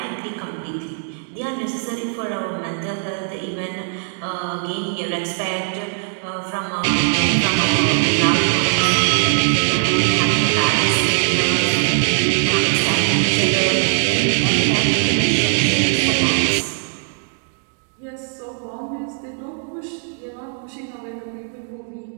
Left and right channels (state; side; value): silent; left; 62 dB below the other